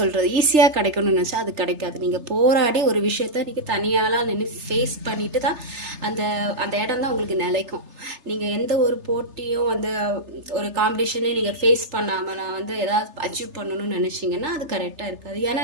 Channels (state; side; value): late; left; 3.3 ms